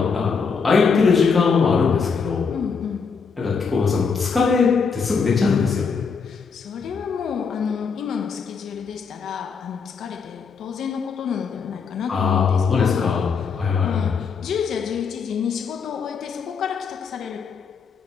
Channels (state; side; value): quieter; right; 5.5 dB